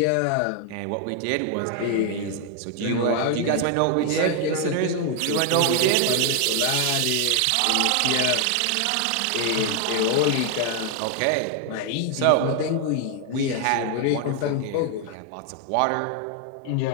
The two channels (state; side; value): different; both; correlation 0.00